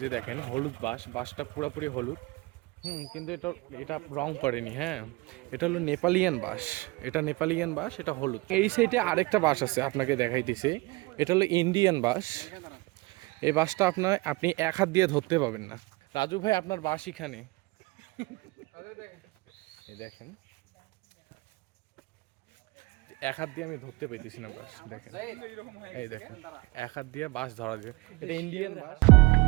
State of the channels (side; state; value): left; quieter; 23.5 dB